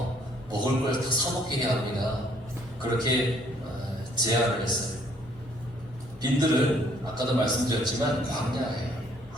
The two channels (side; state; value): both; normal; correlation 0.63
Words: 먹을 걸 다 사먹게 해야 합니다. 그렇게 제안을 했어요. 빈들은 아까도 말씀드렸지만 광야예요.